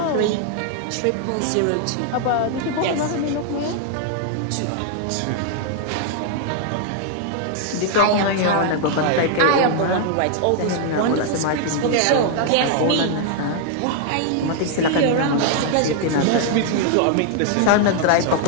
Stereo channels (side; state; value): both; different; correlation 0.00